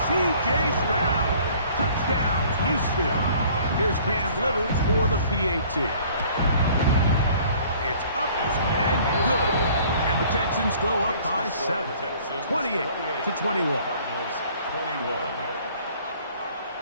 C.J. Stroud. Touchdown, Houston. Here's Cam Little for the PAT. It's up and good. And the Texans go up by 7. 28-21.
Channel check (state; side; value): inverted; both; correlation -0.54